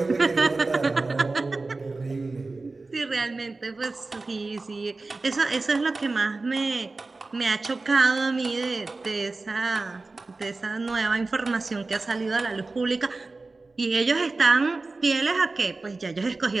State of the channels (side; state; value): left; quieter; 3.5 dB